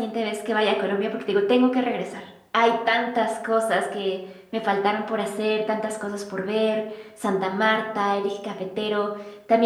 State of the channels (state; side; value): identical; both; correlation 1.00